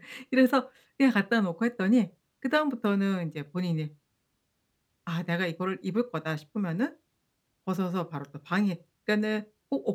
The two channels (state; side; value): identical; both; correlation 1.00